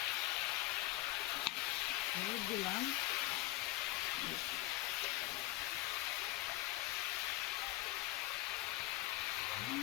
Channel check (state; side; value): quieter; right; 17.9 dB